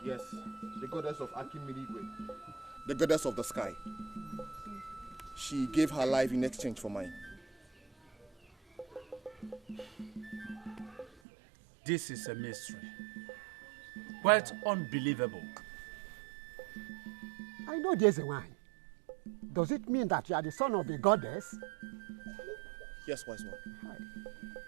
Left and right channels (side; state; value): left; drops out; at 11.1 s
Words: Yes, the goddess of Akimirigwe. The goddess of the sky. She gave her life in exchange for mine. This is a mystery. Quite unbelievable. I know there's a wine. Does it mean that you are the son of the goddess? Yes, wise one.